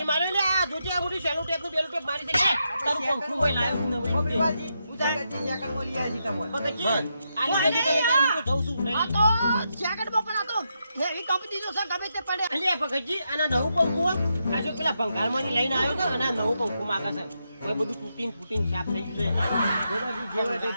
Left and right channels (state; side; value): inverted; both; correlation -0.83